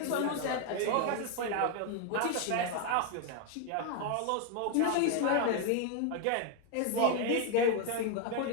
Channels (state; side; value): different; both; correlation 0.01